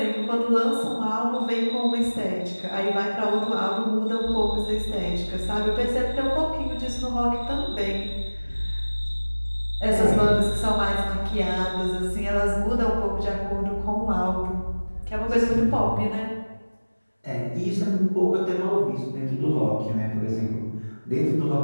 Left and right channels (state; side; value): inverted; both; correlation -1.00